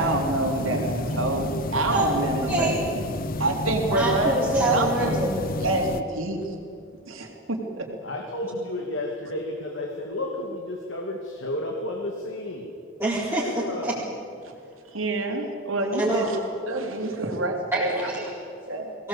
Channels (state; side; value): normal; both; correlation 0.16